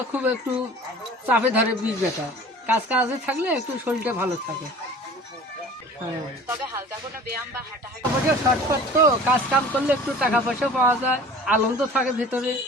খুব একটু চাপে ধরে বীজ ব্যথা, কাজে থাকলে একটু শরীরটা ভালো থাকে। হ্যাঁ, তবে হালকা কোনো ব্যায়াম বা হাঁটাহাঁটি শর্টকাট তো কাজ কাম করলে একটু টাকা পয়সা পাওয়া যায়, আনন্দ থাকে ভেতরে,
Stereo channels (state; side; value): normal; both; correlation 0.44